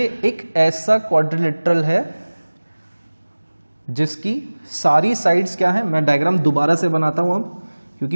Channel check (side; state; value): both; inverted; correlation -1.00